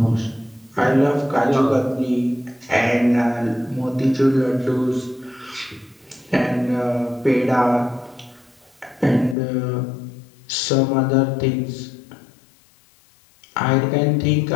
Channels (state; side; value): drops out; right; at 9.3 s